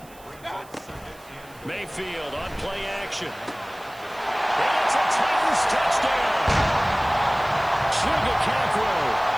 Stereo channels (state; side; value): noise; right; hiss, 24 dB below the sound